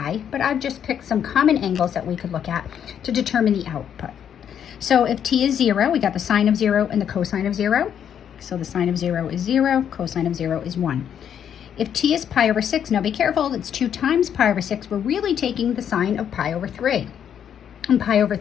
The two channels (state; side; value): quieter; right; 8.9 dB